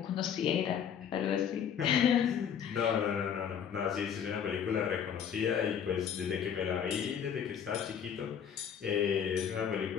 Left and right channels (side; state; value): right; quieter; 8.2 dB